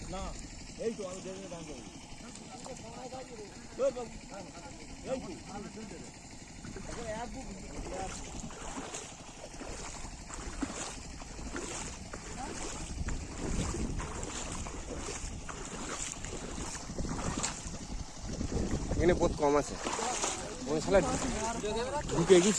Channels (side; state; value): both; identical; correlation 1.00